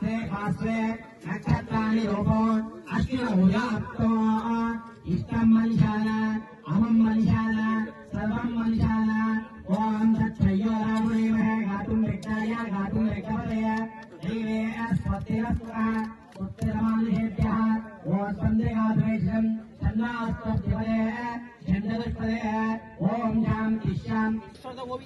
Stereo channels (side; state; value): both; identical; correlation 1.00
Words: भास्वे नक्षत्राणि रूपो अश्विनभुजाप्तो इष्टं मनुष्याण अहं मनुष्याण सर्वं मनुष्याण ओम तत्सयो रामदेवः गातुं रिक्ताय गातुं रिक्तपदय देवे अस्पतिरस्वः उत्तरमानुषेभ्यः ओम स्पन्दगाद्वेषं चन्द्रास्तपदय चन्द्रदस्पदय ओम शान्ति शान्ति